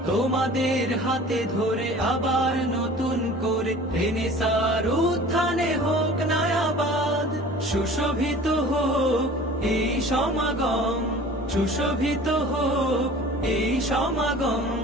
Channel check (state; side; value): normal; both; correlation 0.44